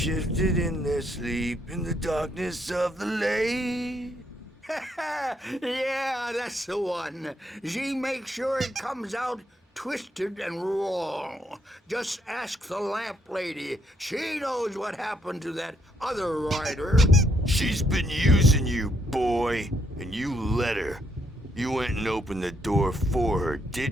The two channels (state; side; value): normal; both; correlation 0.74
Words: in their sleep in the darkness of the lake. Yeah, that's the one. She makes sure it comes out twisted and wrong. Just ask the lamp lady. She knows what happened to that other rider. She's been using you, boy, and you let her. You went and opened the door for her,